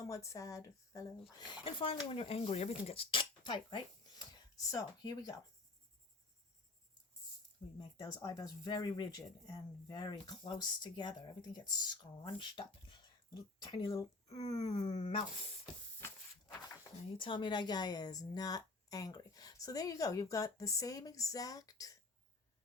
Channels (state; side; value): quieter; right; 3.3 dB